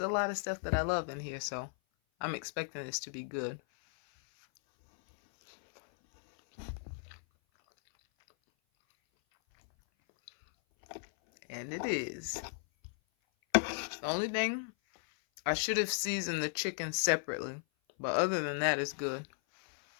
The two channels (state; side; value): silent; right; 54 dB below the other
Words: a lot of stuff that I love in here, so I'm expecting this to be good. And it is. The only thing, I should have seasoned the chicken separately. But other than that, it's good.